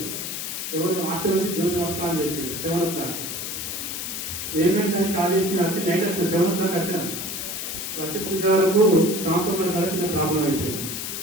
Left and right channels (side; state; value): left; noise; hiss, 5 dB below the sound